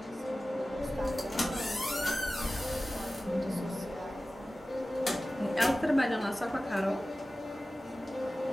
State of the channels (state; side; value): normal; both; correlation 0.96